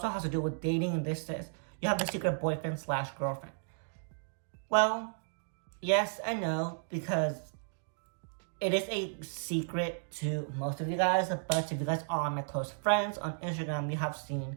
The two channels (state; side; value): silent; left; digital silence